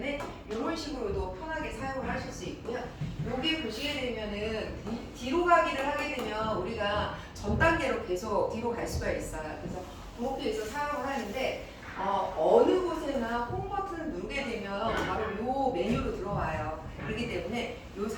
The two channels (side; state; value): both; identical; correlation 1.00